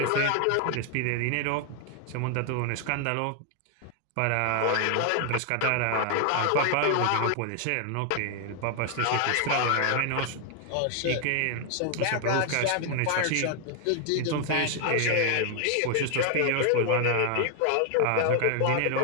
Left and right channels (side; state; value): both; different; correlation 0.00